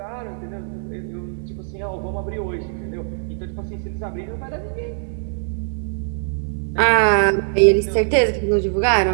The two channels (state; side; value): silent; left; 59 dB below the other